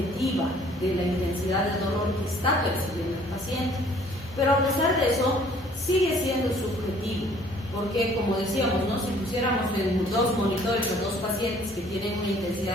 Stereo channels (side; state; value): both; normal; correlation 0.57